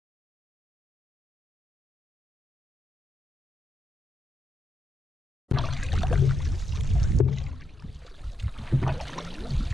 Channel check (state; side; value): normal; both; correlation 0.83